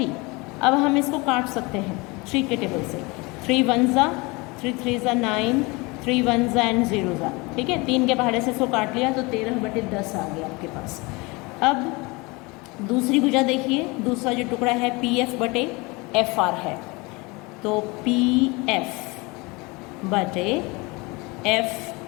अब हम इसको काट सकते हैं 3 के टेबल से, 3 1 ज़ा 3 3 ज़ा 9, 3 1 ज़ा एंड 0 ज़ा, ठीक है। 3 के पहाड़े से इसको काट लिया तो 13/10 आ गया आपके पास। अब दूसरी भुजा देखिए, दूसरा जो टुकड़ा है पी एफ बटे एफ आर है, तो पी एफ बटे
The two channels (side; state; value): right; quieter; 25.7 dB